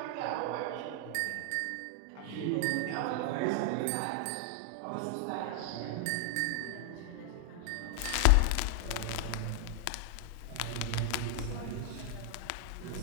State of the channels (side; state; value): both; different; correlation 0.00